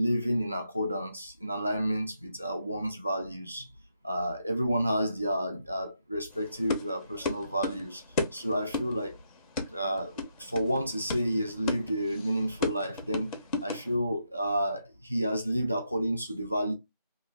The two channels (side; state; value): both; inverted; correlation -0.80